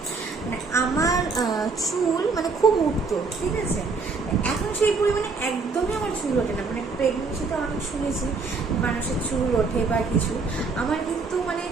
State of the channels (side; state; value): left; quieter; 4.4 dB